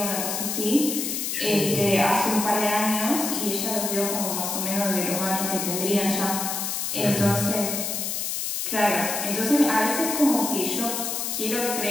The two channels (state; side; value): noise; left; hiss, 2 dB below the sound